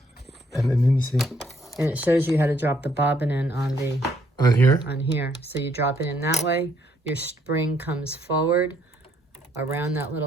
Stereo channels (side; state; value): both; normal; correlation 0.69